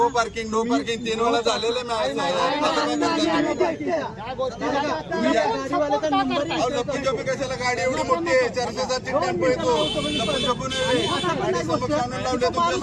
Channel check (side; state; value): both; identical; correlation 1.00